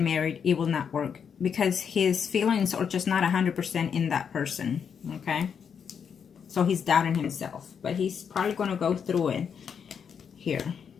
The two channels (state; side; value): quieter; right; 7.1 dB